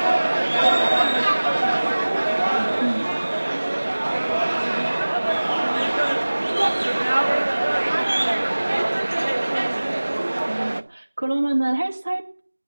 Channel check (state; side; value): inverted; both; correlation -1.00